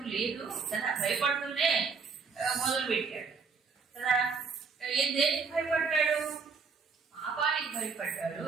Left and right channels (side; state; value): left; quieter; 5.2 dB